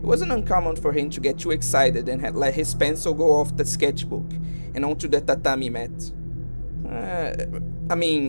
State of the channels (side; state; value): both; inverted; correlation -1.00